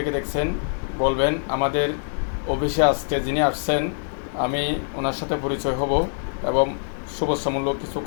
দেখছেন বলবেন। আমাদের অফিসে আজকে যিনি আসছেন আমি ওনার সাথে পরিচয় হব এবং শুভেচ্ছামূলক কিছু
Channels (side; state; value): right; silent; digital silence